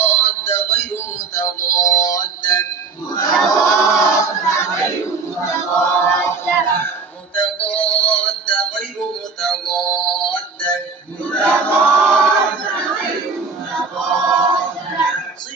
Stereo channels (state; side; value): quieter; left; 4.7 dB